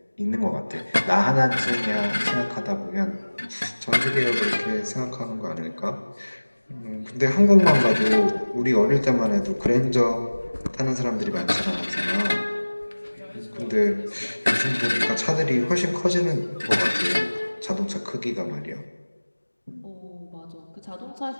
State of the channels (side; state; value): both; inverted; correlation -1.00